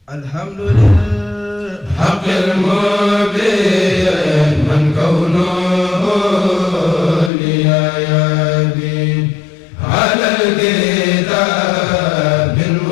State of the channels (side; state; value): right; drops out; at 7.3 s